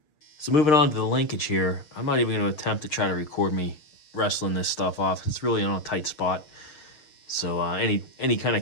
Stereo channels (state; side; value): late; right; 6.5 ms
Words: So moving on to the linkage here, I'm not even going to attempt to try to record me wrestling this stuff off. It's really on a tight spot. So any kind